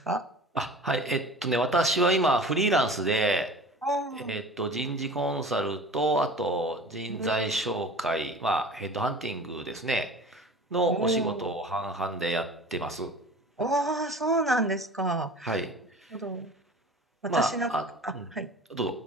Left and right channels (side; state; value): both; normal; correlation 0.40